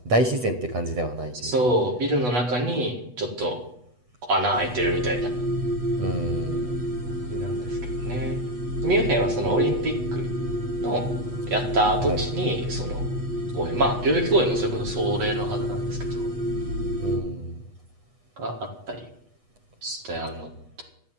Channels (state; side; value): late; left; 8.2 ms